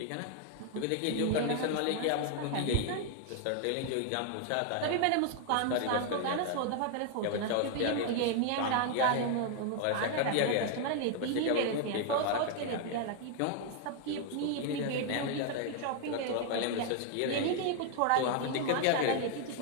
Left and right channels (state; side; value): different; both; correlation 0.00